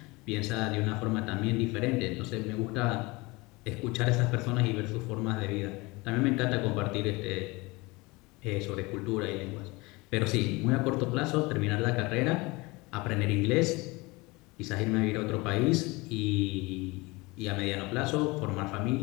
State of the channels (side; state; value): right; quieter; 23.9 dB